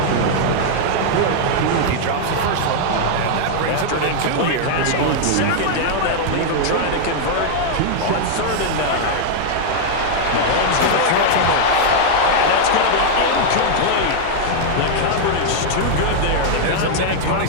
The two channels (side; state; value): both; different; correlation -0.01